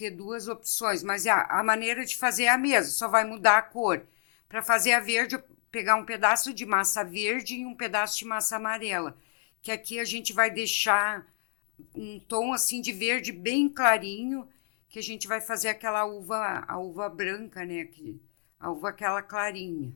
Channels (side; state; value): right; silent; 59 dB below the other